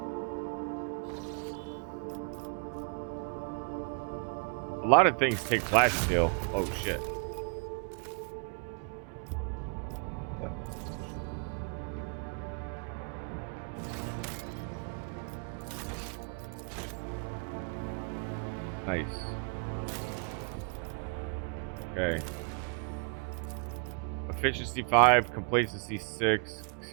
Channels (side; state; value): left; quieter; 38.5 dB